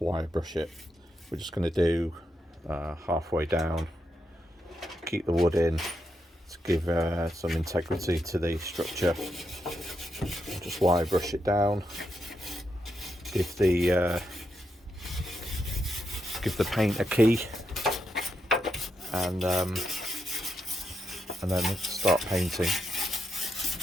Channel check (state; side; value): normal; both; correlation 0.83